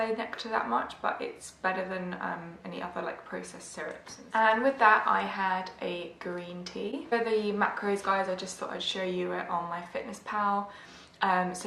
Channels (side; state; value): both; identical; correlation 1.00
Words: nectar that much, but it's better than any other like processed syrups. And with that I had a green tea. For the macros, guys, I just thought I'd show you it on my Fitness Pal.